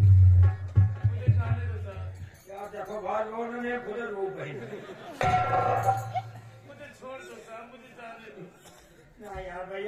क्या देखो भाई, लोगों ने खुद रो गई। मुझे छोड़ दो साहब, मुझे जाने दो ना यार।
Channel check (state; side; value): identical; both; correlation 1.00